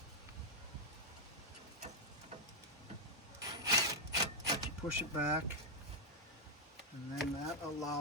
that you push it back, and then that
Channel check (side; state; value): both; normal; correlation -0.03